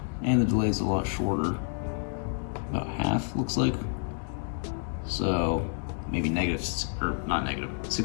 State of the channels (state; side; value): silent; right; 58 dB below the other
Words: And the delay is a lot shorter, about half looks like. So maybe negative, or not negative,